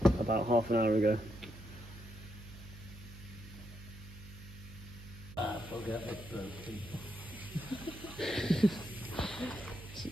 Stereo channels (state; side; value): noise; right; hum, 15 dB below the sound